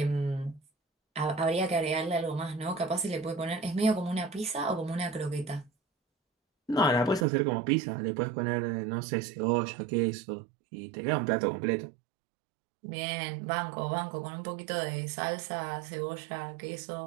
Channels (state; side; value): drops out; left; at 7.2 s